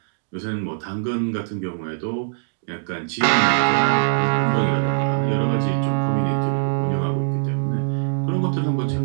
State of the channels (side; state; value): left; silent; digital silence